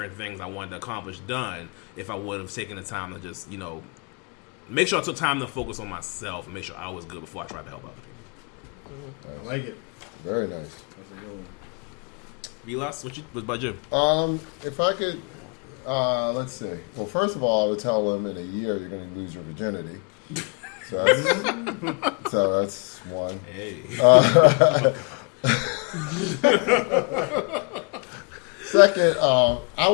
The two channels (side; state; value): right; quieter; 34.8 dB